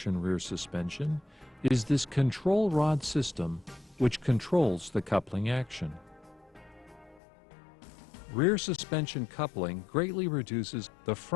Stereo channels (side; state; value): right; drops out; at 7.2 s